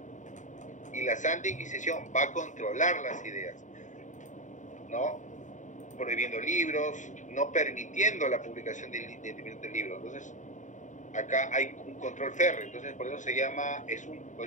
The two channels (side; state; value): right; late; 0.36 ms